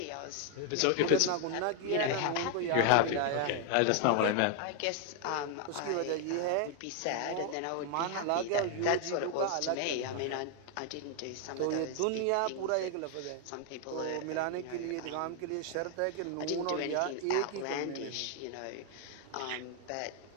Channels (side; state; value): both; different; correlation 0.00